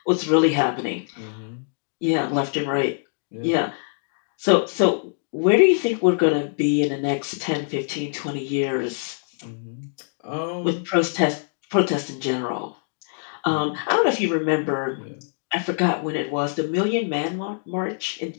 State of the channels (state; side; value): silent; right; digital silence